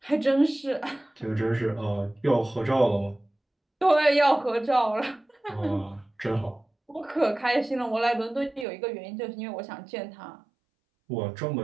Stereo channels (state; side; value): drops out; left; at 8.7 s